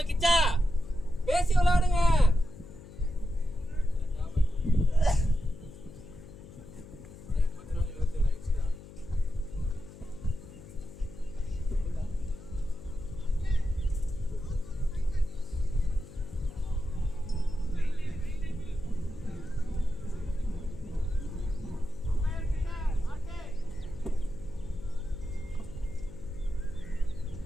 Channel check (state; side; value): noise; left; hum, 17 dB below the sound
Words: கிச்சா பேசி விளையாடுங்க.